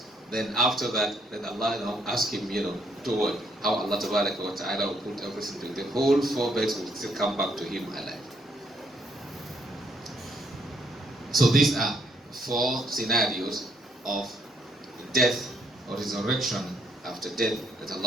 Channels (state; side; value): normal; both; correlation 0.70